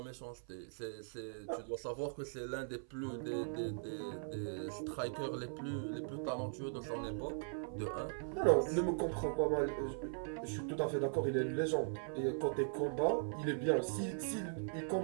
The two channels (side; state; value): left; silent; 51 dB below the other